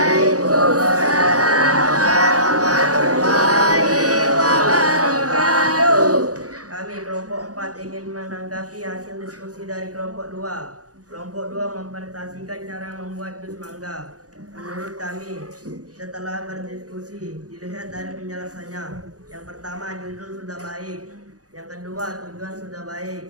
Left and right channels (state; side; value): late; left; 0.67 ms